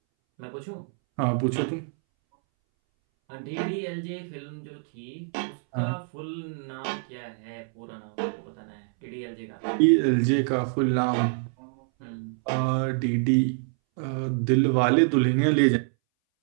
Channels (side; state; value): left; silent; 61 dB below the other